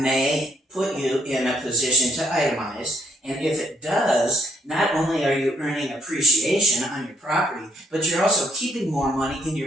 put you in a position to itemize. And if it does, not only are you earning appreciation on your property, but you're also keeping more money in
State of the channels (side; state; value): both; normal; correlation 0.69